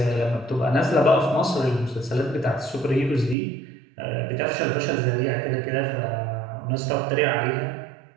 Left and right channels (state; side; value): drops out; left; at 3.4 s